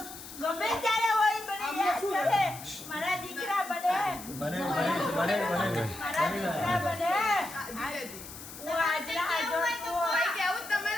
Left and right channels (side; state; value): left; noise; hiss, 13 dB below the sound